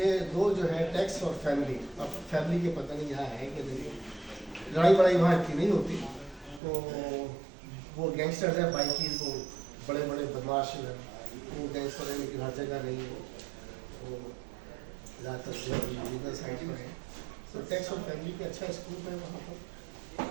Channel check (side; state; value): left; drops out; at 6.6 s